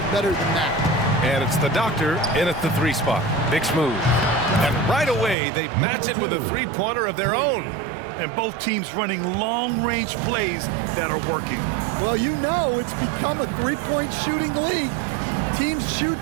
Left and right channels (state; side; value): drops out; left; at 5.4 s